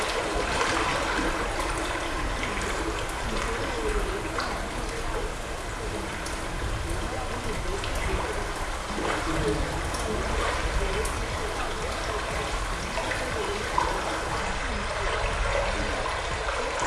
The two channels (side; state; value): both; identical; correlation 1.00